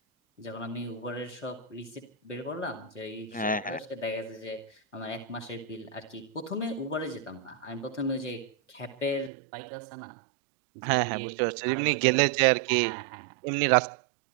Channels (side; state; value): left; drops out; at 9.3 s